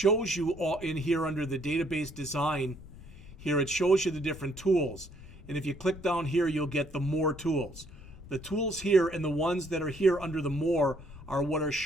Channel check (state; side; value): noise; left; rumble, 19 dB below the sound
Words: you all in here under the database design. Here it shows you the different tools. And if you click down here, you'll get the more tools. The tools here and the ones that are here under the more are what are